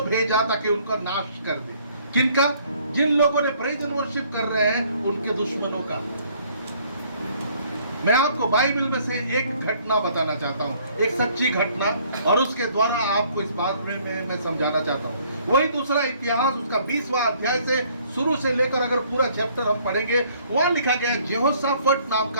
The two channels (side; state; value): both; inverted; correlation -0.61